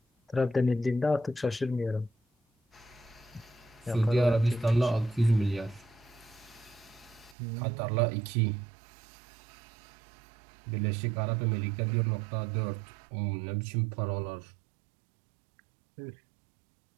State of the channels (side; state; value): left; drops out; at 7.4 s